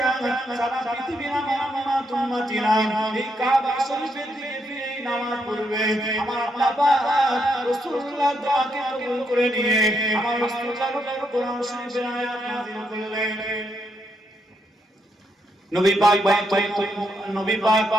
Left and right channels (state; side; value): normal; both; correlation 0.78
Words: সারা পৃথিবীর আমার উম্মতিরা এই কাবা শরীফের দিকে ফিরে নামাজ পড়বে। আমার আল্লাহ পাক রাসূলুল্লাহর দোয়াকে কবুল করে নিয়ে আমার রাসূলুল্লাহর উপর কোরআন শরীফের আয়াত নাযিল করলেন। নবী